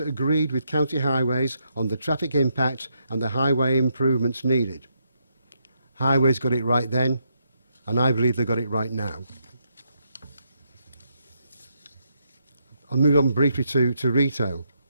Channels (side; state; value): both; inverted; correlation -0.78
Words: agreed with County Highways on the traffic impact and the highway improvements needed. Highways got it right then, and I believe they got it right now. I'll move on briefly to retail.